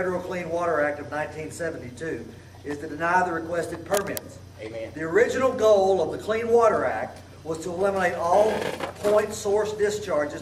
Clean Water Act of 1972 is to deny the requested permits. Amen. The original goal of the Clean Water Act was to eliminate all point source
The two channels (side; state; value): both; identical; correlation 1.00